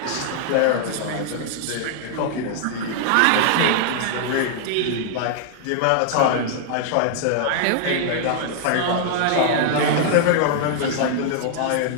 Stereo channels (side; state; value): both; different; correlation -0.01